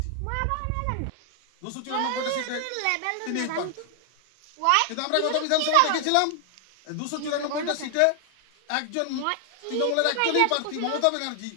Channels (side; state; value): both; different; correlation 0.00